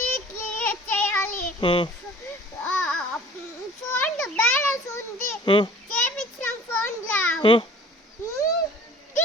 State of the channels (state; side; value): normal; both; correlation 0.48